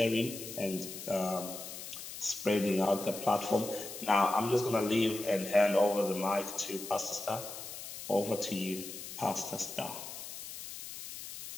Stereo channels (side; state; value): left; noise; hiss, 10 dB below the sound